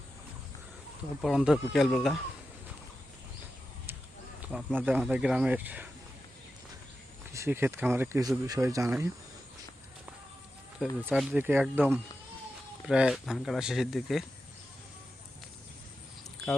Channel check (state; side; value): normal; both; correlation 0.91